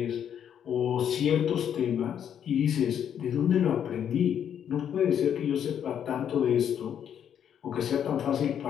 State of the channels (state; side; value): quieter; right; 9.0 dB